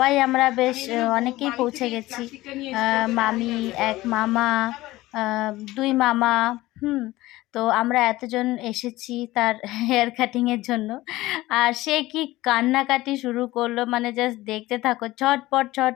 আমরা বেশ অনেকেই পৌঁছে গেছি। মামি, এক মামা, দুই মামা, তো আমরা এতজন এসেছি তার হেয়ার কাটিংয়ের জন্য। আর সে কি কান্নাকাটি শুরু করলো, মানে জাস্ট দেখতে থাকো, ছটপট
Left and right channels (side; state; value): right; quieter; 17.9 dB